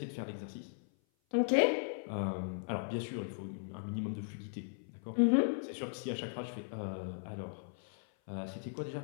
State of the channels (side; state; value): right; silent; 53 dB below the other